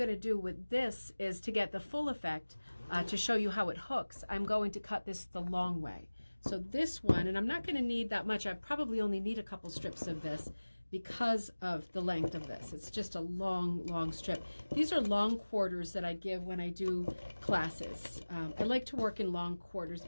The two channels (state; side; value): inverted; both; correlation -1.00